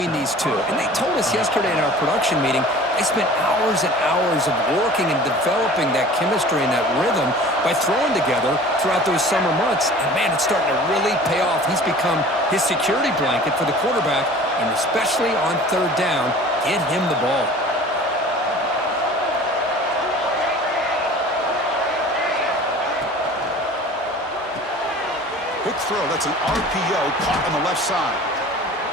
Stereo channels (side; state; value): both; normal; correlation 0.44